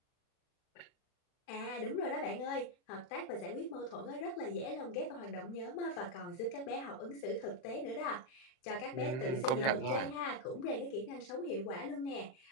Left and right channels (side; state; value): right; late; 39 ms